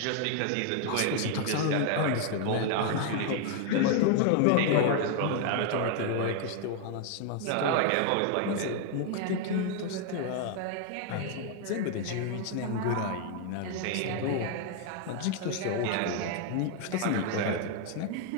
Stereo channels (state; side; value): different; both; correlation 0.00